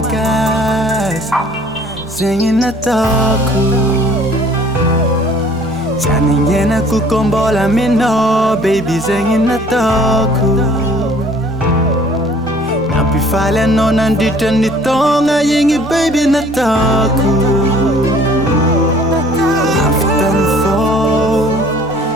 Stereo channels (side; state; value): both; normal; correlation 0.54